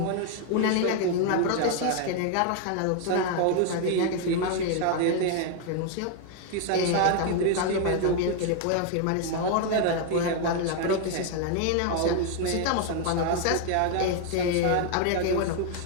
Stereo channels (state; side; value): different; both; correlation 0.00